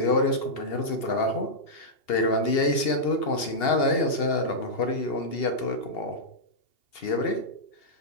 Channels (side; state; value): right; late; 2.8 ms